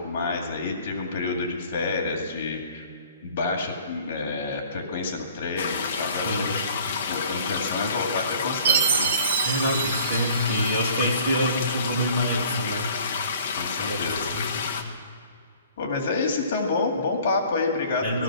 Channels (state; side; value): inverted; both; correlation -0.52